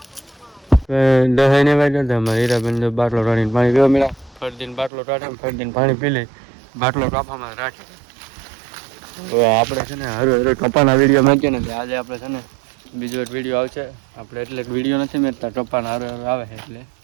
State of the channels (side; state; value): left; drops out; at 4.9 s